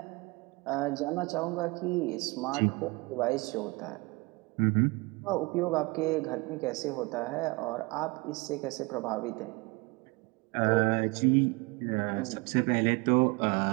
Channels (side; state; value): left; quieter; 25.9 dB